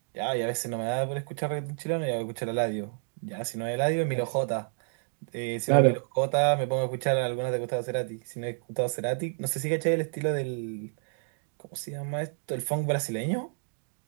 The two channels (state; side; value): silent; left; digital silence